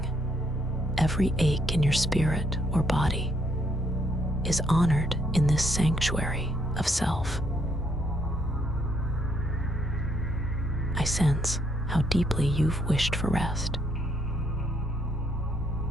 every ache in your spirit or body, is honored in this sanctuary of self. I sense how deeply you've wished for rest,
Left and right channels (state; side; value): normal; both; correlation 0.72